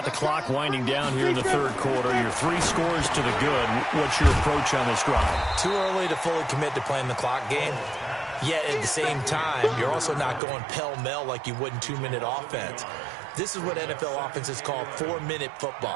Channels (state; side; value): drops out; left; at 10.4 s